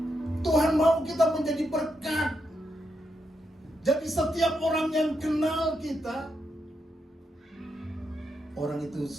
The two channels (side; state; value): both; normal; correlation 0.83